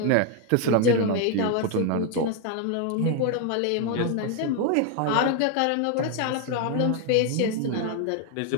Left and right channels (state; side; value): different; both; correlation 0.01